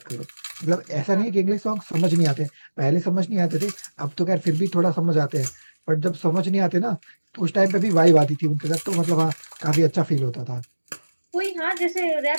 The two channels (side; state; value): both; inverted; correlation -1.00